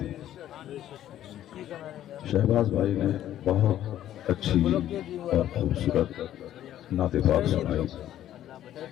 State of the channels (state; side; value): quieter; right; 12.1 dB